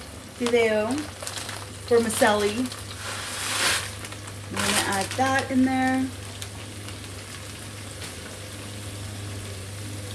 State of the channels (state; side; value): identical; both; correlation 1.00